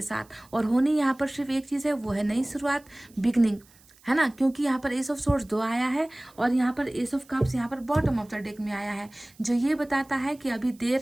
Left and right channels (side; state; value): right; noise; hiss, 28 dB below the sound